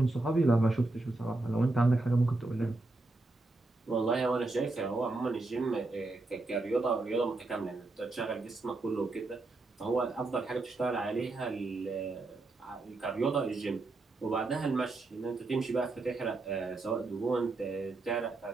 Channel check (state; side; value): quieter; left; 3.2 dB